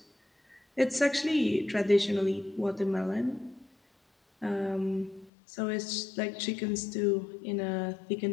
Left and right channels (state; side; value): drops out; right; at 5.3 s